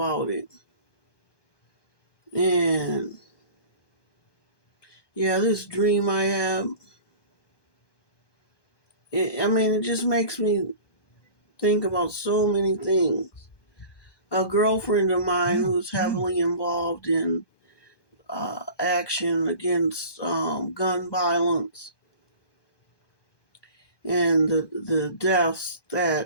it. And yeah, this dream I have, it just makes me think about so many things. A girlfriend of mine who's heavily involved in action against gun violence and the deaths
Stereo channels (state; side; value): late; right; 1.2 ms